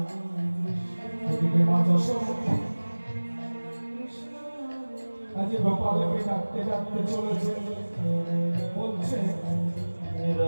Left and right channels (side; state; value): both; inverted; correlation -1.00